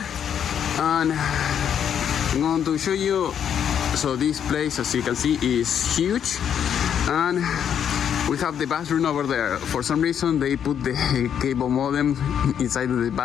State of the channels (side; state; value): right; quieter; 8.7 dB